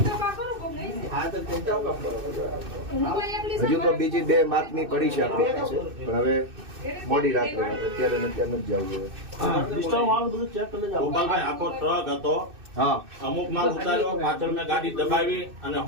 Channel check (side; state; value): left; late; 2.6 ms